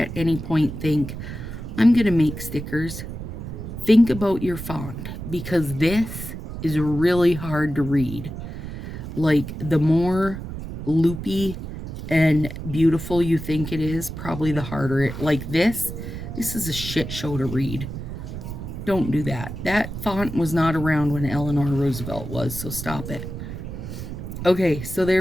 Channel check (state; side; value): noise; right; rumble, 8 dB below the sound